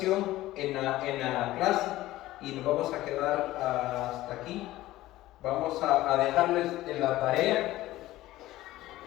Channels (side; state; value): right; quieter; 16.3 dB